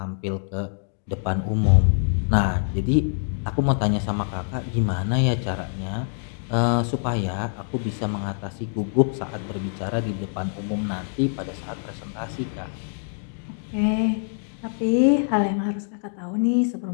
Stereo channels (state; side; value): silent; right; digital silence